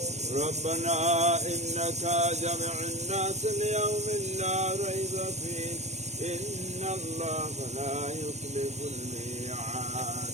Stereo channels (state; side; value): late; left; 0.32 ms